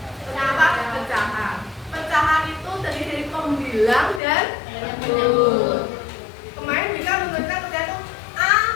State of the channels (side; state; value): right; drops out; at 4.2 s